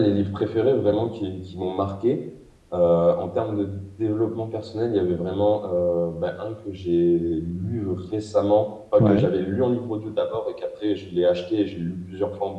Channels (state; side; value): identical; both; correlation 1.00